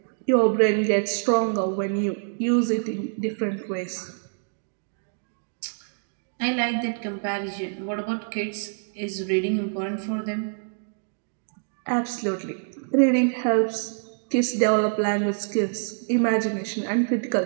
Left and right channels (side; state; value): left; silent; digital silence